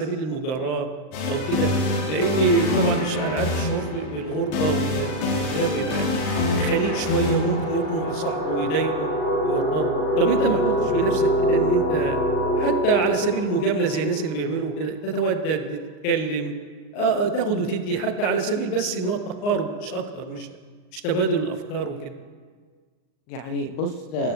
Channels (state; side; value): late; right; 39 ms